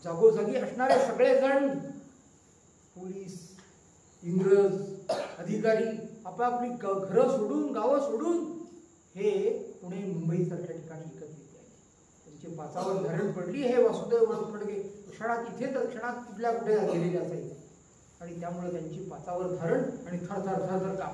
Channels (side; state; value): both; identical; correlation 1.00